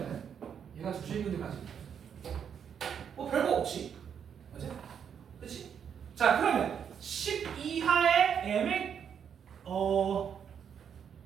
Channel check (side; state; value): left; quieter; 7.8 dB